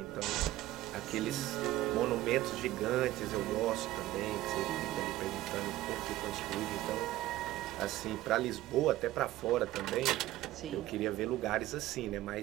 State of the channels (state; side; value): quieter; left; 15.7 dB